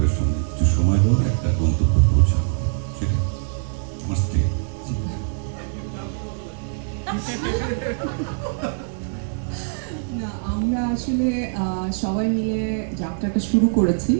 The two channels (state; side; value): silent; left; digital silence